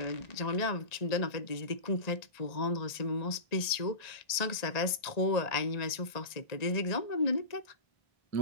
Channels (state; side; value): late; right; 1.8 ms